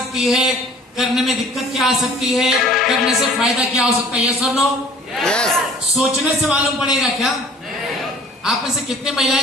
है, करने में दिक्कत क्या आ सकती है, करने से फायदा क्या हो सकता है। यस और नो? यस। सोचने से मालूम पड़ेगा क्या? आप में से कितने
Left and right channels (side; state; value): both; normal; correlation 0.51